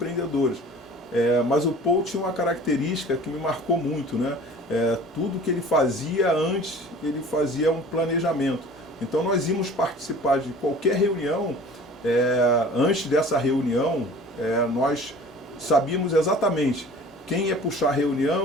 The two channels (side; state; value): both; normal; correlation 0.45